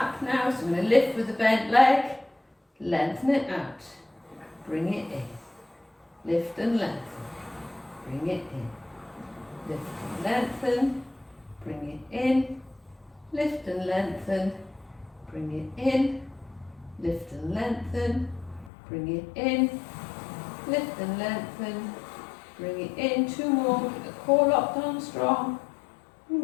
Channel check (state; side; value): drops out; right; at 18.7 s